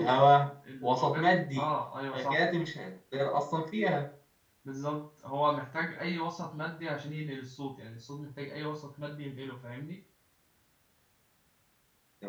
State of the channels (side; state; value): both; identical; correlation 1.00